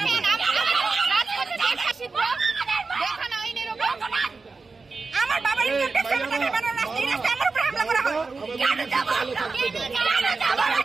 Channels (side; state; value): left; quieter; 4.2 dB